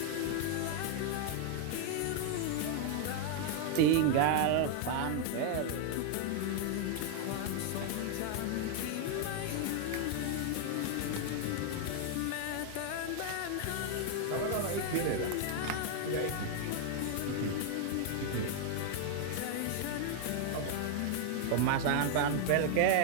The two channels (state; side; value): different; both; correlation 0.00